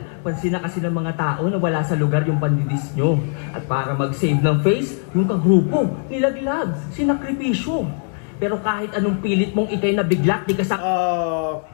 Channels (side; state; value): right; silent; 55 dB below the other